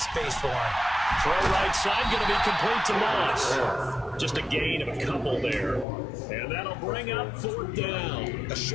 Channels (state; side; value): drops out; right; at 5.9 s